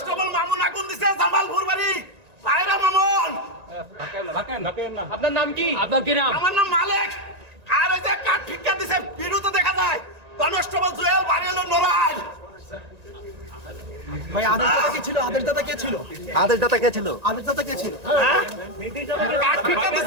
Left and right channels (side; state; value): left; late; 1.9 ms